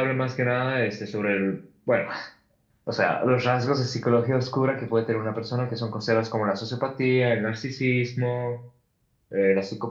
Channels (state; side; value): identical; both; correlation 1.00